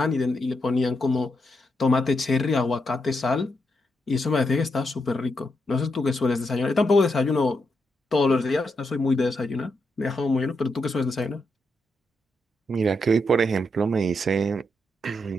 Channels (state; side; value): normal; both; correlation 0.82